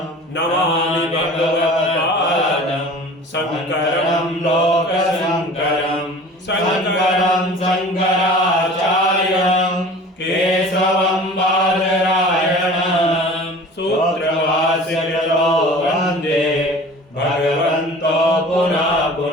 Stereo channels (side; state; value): both; normal; correlation 0.42